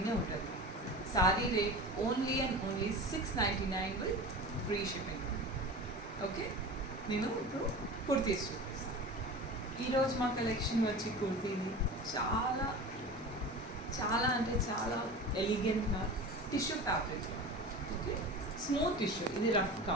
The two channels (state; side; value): normal; both; correlation 0.33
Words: ఉంటుంది. Sorry rate only and only 699 with free shipping. Okay, నేను ఇప్పుడు కుర్తీస్ చూపిస్తాను. ఈరోజు మా కలెక్షన్ వచ్చి కుర్తీని చాలా చాలా అంటే చాలా ఎలిగెంట్గా tissue fabric. Okay, smooth tissue, ఇది రఫ్